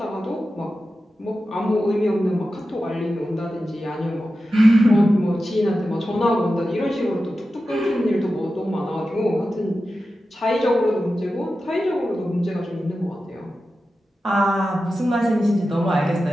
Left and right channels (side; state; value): both; normal; correlation 0.92